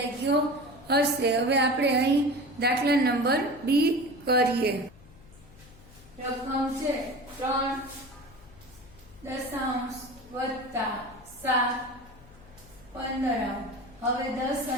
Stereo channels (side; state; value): left; noise; hum, 23 dB below the sound